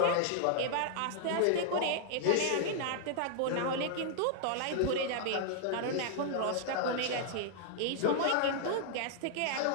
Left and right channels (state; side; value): different; both; correlation -0.01